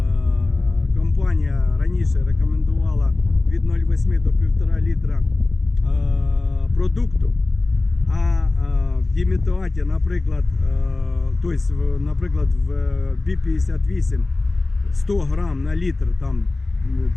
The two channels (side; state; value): right; quieter; 3.2 dB